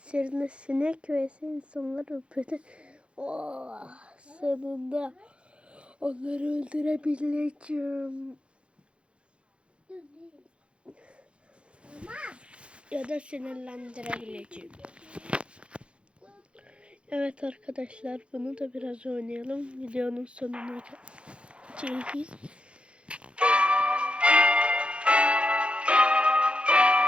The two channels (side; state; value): left; late; 0.058 ms